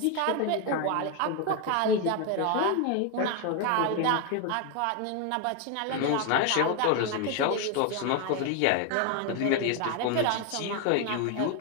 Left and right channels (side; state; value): both; different; correlation 0.01